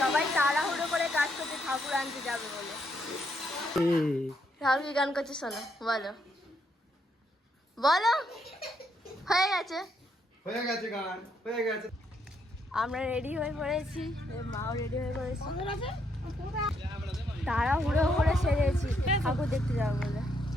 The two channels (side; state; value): both; normal; correlation 0.75